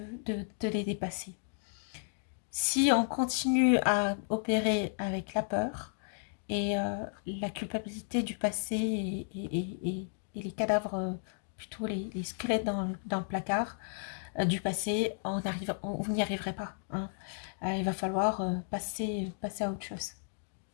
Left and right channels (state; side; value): silent; right; digital silence